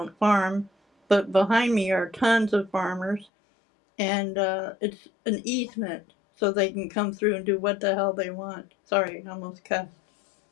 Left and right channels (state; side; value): drops out; right; at 3.2 s